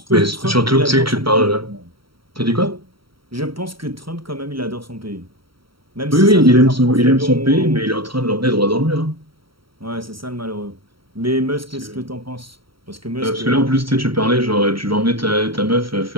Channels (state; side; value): late; left; 0.74 ms